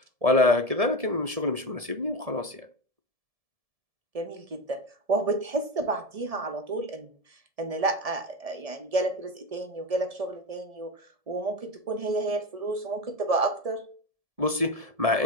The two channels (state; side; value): late; left; 1.7 ms